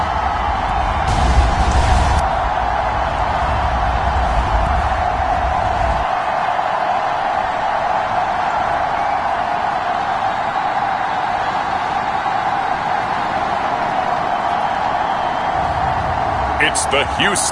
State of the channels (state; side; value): identical; both; correlation 1.00